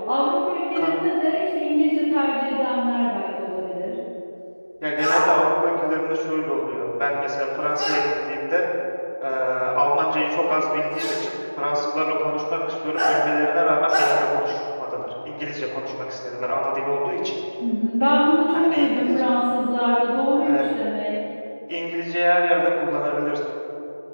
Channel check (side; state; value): both; inverted; correlation -1.00